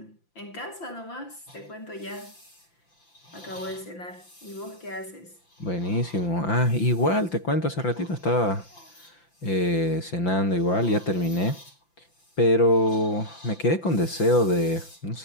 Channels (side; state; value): right; late; 5.8 ms